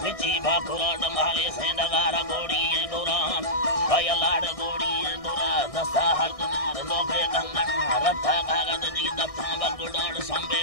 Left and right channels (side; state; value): right; late; 1.6 ms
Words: विची भाकुराड माले से नगारा गोड़ी गोरा भय लाड गोड़ी गोरा दसा हरदनार लोगे गंगन रथा कागद दी दफा बगुडाड़ संबे